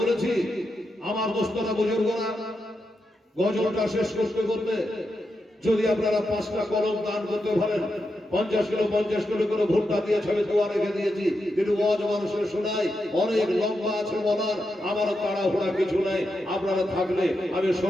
আমার দোস্তরা বুজুর্গরা গজলটা শেষ করতে করতে যদি আপনারা 5টা কলম দান করতে পারেন, 50 কিলো করে ভুট্টা দিয়ে ছবি দোয়া রেখে দিয়েছি, কিন্তু ওয়াজ মানুষের শোনাই অনেক লম্বা আছে বলার, আমার তাড়াহুড়া কিছু নাই। আপনারা থাকলে আমি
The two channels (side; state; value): both; normal; correlation 0.86